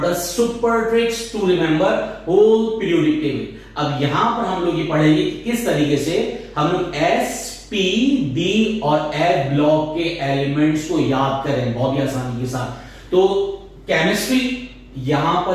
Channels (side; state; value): both; identical; correlation 1.00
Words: the super tricks to remember whole periodic table. अब यहां पर हम लोग ये पढ़ेंगे कि किस तरीके से हम लोग एस पी डी और एफ ब्लॉक के एलिमेंट्स को याद करें बहुत ही आसानी के साथ। तो केमिस्ट्री यहां